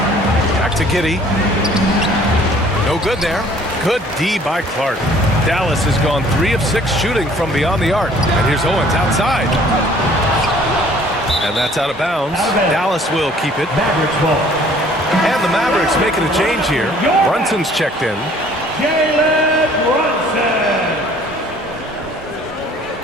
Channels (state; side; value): normal; both; correlation 0.55